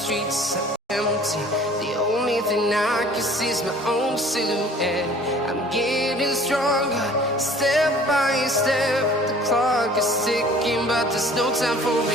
empty. The only thing I can see is my own silhouette. I'm getting stronger, step by step. The clock is ticking, but there's no time for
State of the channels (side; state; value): both; normal; correlation 0.50